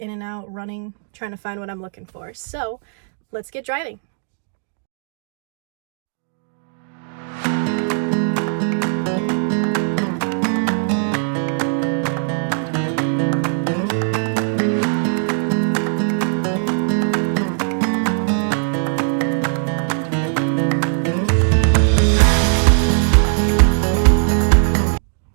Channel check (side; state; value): left; silent; digital silence